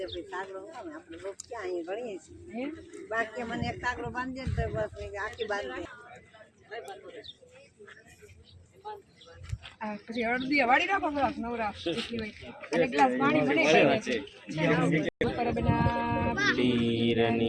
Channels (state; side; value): identical; both; correlation 1.00